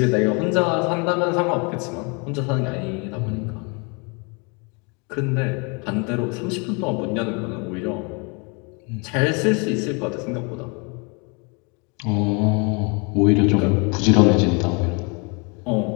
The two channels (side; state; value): right; quieter; 32.4 dB